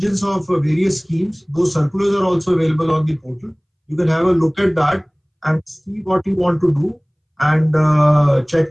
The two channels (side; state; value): both; identical; correlation 1.00